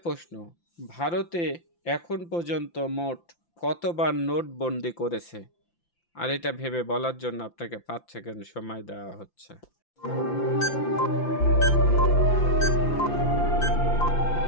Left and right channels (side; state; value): right; late; 5.9 ms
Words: প্রশ্ন, ভারতে এখন পর্যন্ত মোট কতবার নোটবন্দি করেছে? আর এটা ভেবে বলার জন্য আপনাকে 5 সেকেন্ড সময় দেওয়া হচ্ছে।